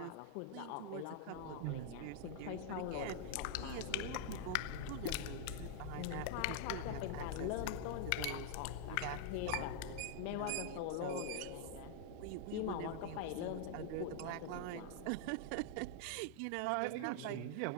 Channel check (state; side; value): different; both; correlation 0.00